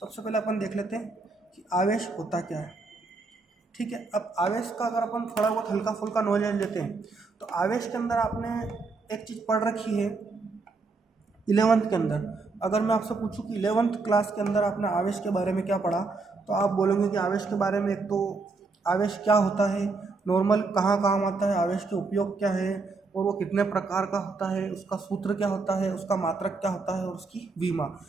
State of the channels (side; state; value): left; quieter; 4.0 dB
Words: सबसे पहले अपन देख लेते हैं कि आवेश होता क्या है, ठीक है। अब आवेश का अगर अपन थोड़ा बहुत हल्का फुल्का नॉलेज लेते हैं तो आवेश के अंदर आपने एक चीज़ पढ़ रखी है 11th के अंदर। अगर मैं आपसे पूछूं कि 11th क्लास के अंदर आपने आवेश के बारे में क्या पढ़ा, तो आप बोलोगे कि आवेश के बारे में एक तो आवेश क्या होता है, नॉर्मल कहाँ काम आता है, आवेश के उपयोग क्या है, और वो कितने प्रकार का होता है, उसका सूत्र क्या होता है, उसका मात्रक क्या होता है, और उसकी विमा।